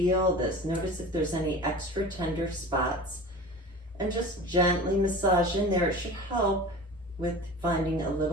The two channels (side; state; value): both; normal; correlation 0.36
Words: this. Notice if there's any extra tender spots, and just gently massage in there. It should help with finding a